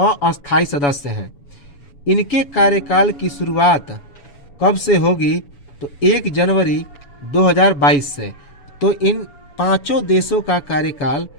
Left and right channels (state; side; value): late; right; 7.0 ms